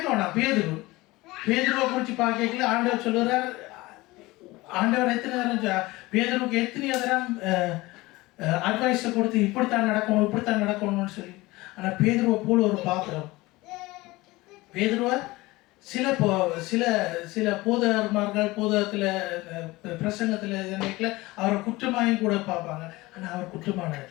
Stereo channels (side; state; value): right; quieter; 20.6 dB